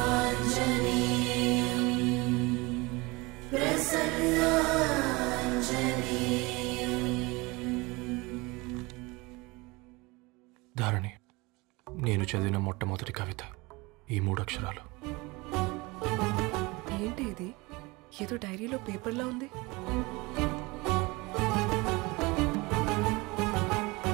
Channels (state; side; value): quieter; left; 24.3 dB